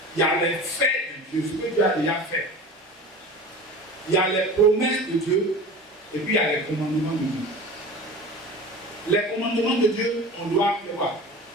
il y a les faits de Dieu, ce que Dieu a déjà fait. Il y a les promesses de Dieu. Et puis il y a les commandements de Dieu. Les commandements de Dieu, on doit faire quoi?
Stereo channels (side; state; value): both; normal; correlation 0.35